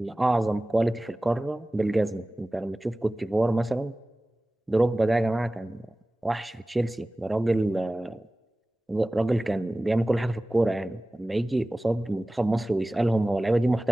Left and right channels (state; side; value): normal; both; correlation 0.97